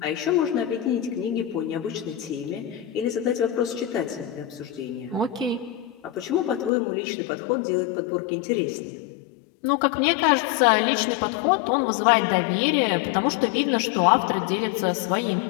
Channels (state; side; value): drops out; right; at 6.7 s